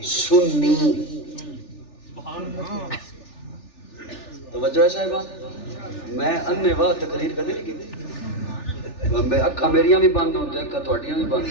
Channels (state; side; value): late; right; 3.4 ms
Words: سنی، توجہ ہے صاحبہ، میں اننے واہ تقریر کدے نہیں کی، اکھا میریاں بھی بند ہوتے ہیں، اکھا توڑیاں بھی بند